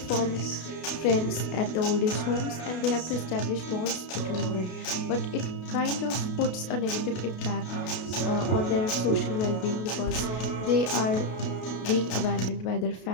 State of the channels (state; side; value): late; right; 32 ms